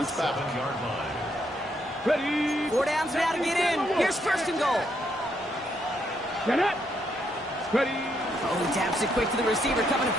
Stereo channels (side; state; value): both; normal; correlation 0.76